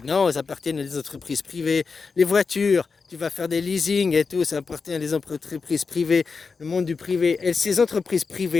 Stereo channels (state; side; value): quieter; right; 4.9 dB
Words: Non, ils appartiennent à des entreprises privées. Les voitures, tu vas faire des leasing et tout, ça appartient à des entreprises privées, le monde du privé. Et ces entreprises